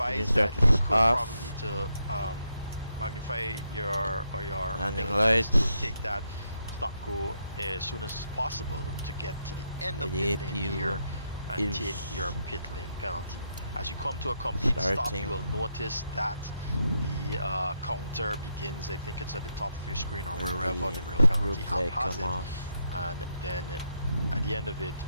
that you could probably to magnify your landing lights to take that stop-go as soon as possible to get to the end of pit lane here and take your pit lane penalty. As you come to a complete stop, you will notice that the counter begins, I think it's at the top of your screen or wherever the real penalty app has it. And then at the end of it,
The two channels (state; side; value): inverted; both; correlation -0.80